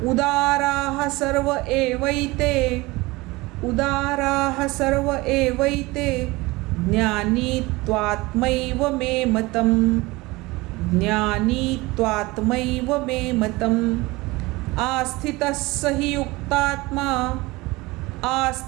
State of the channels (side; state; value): left; quieter; 21.9 dB